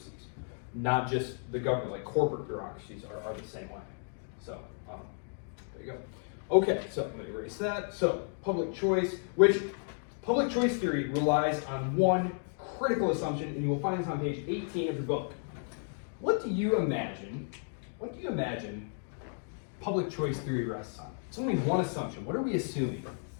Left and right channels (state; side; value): silent; right; 56 dB below the other